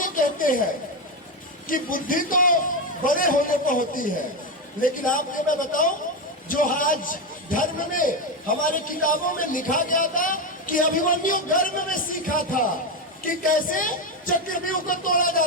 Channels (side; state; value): both; normal; correlation 0.11